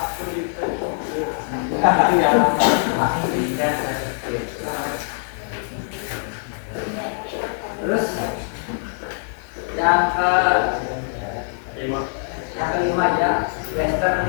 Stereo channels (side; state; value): right; silent; 60 dB below the other